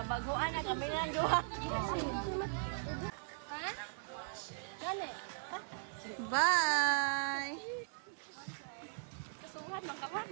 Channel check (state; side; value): silent; left; 52 dB below the other